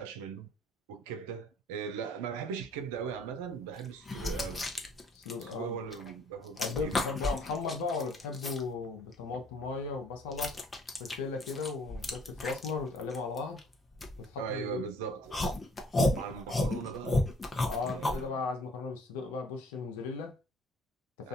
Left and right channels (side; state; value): both; normal; correlation 0.57